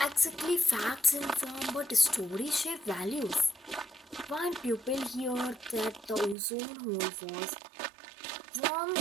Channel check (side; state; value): left; drops out; at 6.4 s